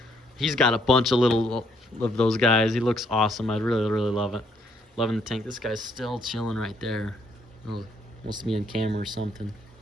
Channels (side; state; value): both; normal; correlation 0.69